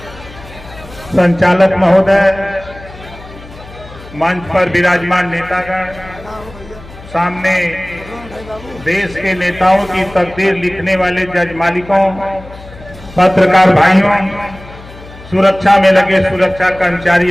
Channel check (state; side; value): noise; left; hum, 18 dB below the sound